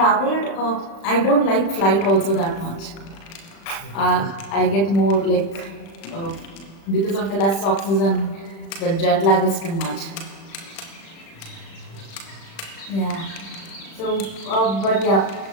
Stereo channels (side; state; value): right; late; 36 ms